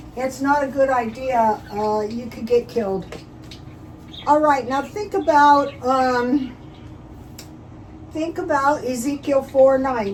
It's not a good idea. You could get killed. All right, now think about Ezekiel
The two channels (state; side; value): identical; both; correlation 1.00